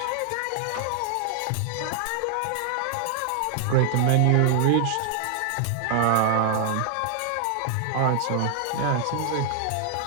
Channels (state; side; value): different; both; correlation 0.00